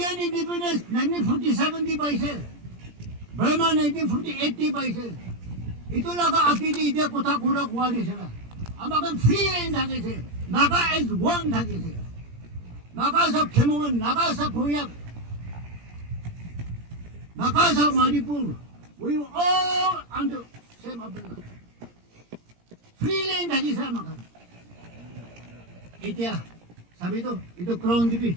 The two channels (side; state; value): left; late; 17 ms